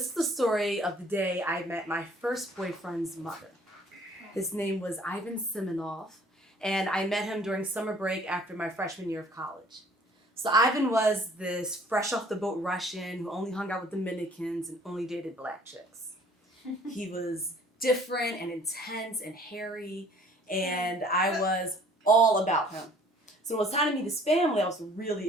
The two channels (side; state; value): both; normal; correlation 0.55